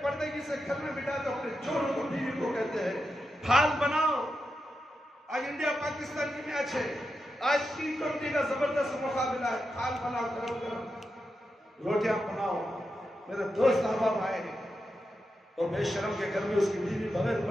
پردگی سے گھر میں بٹا کر اپنے چوروں کو بیوی کو کہتے ہیں پھال بناؤ۔ آج انڈیا پاکستان کی میچ ہے، آج T20 کا زبردست مقابلہ ہے، پھال بناؤ، گرم گرم روٹیاں بناؤ۔ میرے دوست احباب آئے ہیں اور بے شرم کے گھر میں اس کی بیوی بغیر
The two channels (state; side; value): normal; both; correlation 0.88